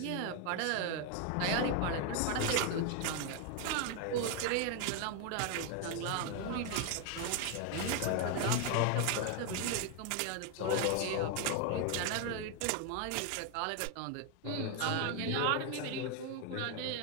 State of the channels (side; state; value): both; different; correlation 0.01